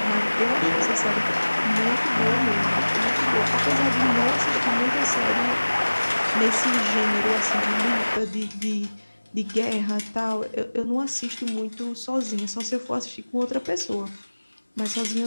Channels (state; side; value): inverted; both; correlation -1.00